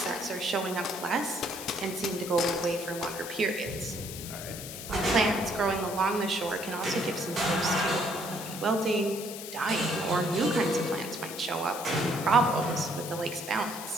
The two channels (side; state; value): left; noise; hiss, 10 dB below the sound